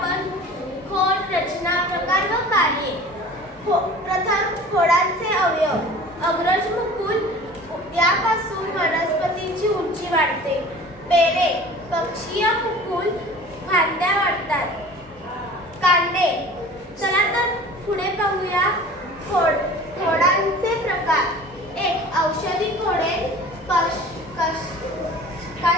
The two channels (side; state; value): both; normal; correlation 0.43